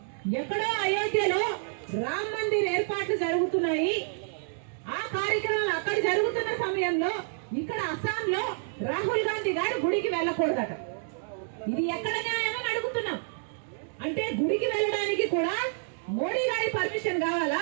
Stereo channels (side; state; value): left; silent; digital silence